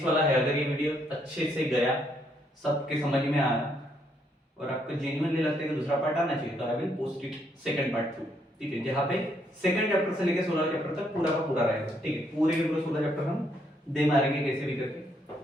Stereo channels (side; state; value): both; normal; correlation 0.73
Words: वाला है, अगर ये वीडियो अच्छे से गया, सबके समझ में आया और आपको जेन्युइनली लगता है कि दूसरा पार्ट आना चाहिए, तो I will post it second part 2, ठीक है, जहां पे सेकंड चैप्टर से लेकर 16 चैप्टर तक पूरा का पूरा रहेगा, ठीक है। पूरे के पूरे 16 चैप्टर हम दे मारेंगे कैसे भी करके,